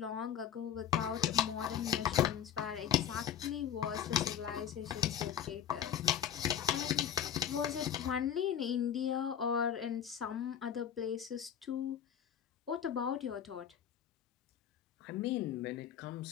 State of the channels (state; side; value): quieter; right; 9.2 dB